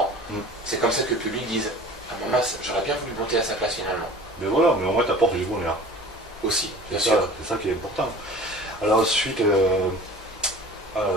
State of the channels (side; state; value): both; normal; correlation 0.42